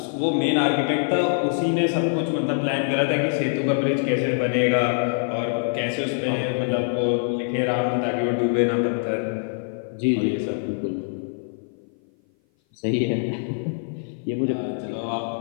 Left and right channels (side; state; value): right; silent; 57 dB below the other